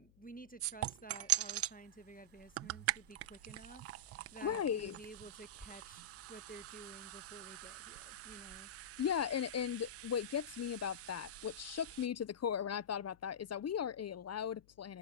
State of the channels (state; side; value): noise; left; hum, 28 dB below the sound